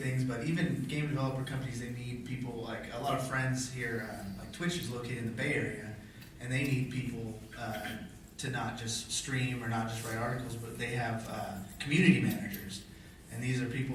things. But even game developer companies, they need people. Like a lot of friends here, like Twitch is located in the Bay Area, and they need people to not just stream or not just write articles, but they have community managers, and these are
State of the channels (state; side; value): identical; both; correlation 1.00